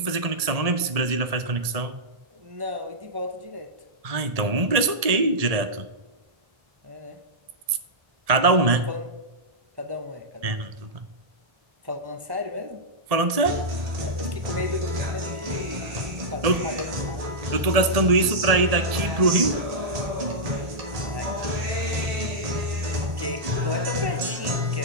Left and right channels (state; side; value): late; left; 1.7 ms